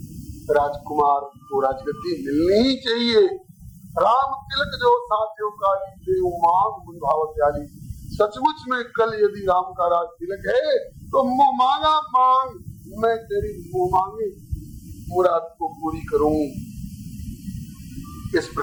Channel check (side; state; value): both; identical; correlation 1.00